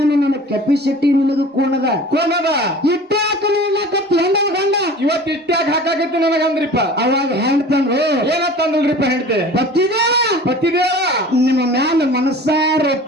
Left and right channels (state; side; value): normal; both; correlation 0.42